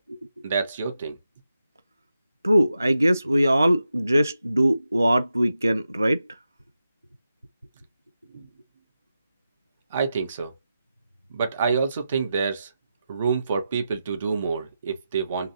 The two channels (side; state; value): both; inverted; correlation -0.89